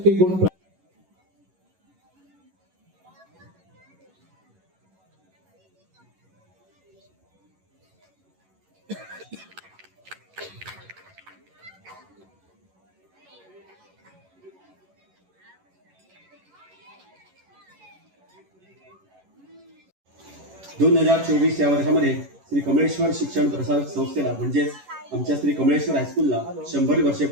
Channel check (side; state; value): left; late; 11 ms